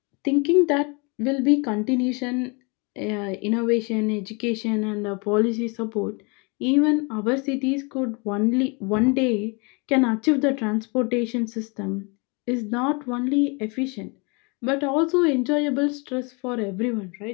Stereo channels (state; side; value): quieter; right; 31.1 dB